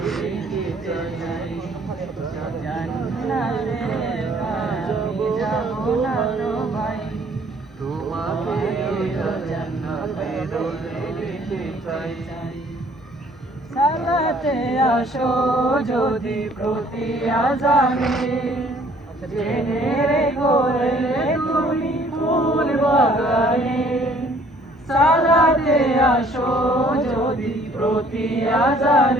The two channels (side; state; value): both; normal; correlation 0.58